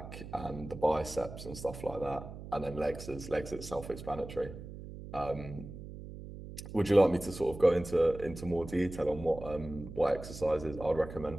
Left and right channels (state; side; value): noise; right; hum, 12 dB below the sound